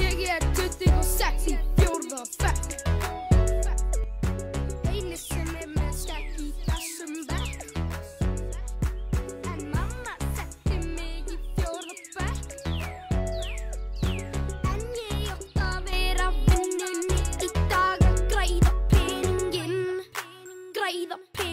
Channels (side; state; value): both; identical; correlation 1.00